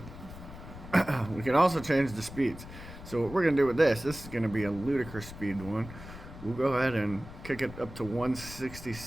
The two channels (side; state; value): left; noise; rumble, 14 dB below the sound